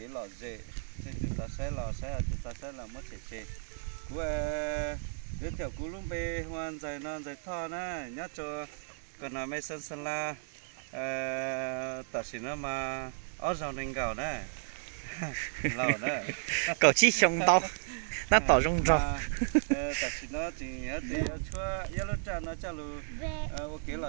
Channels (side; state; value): left; silent; digital silence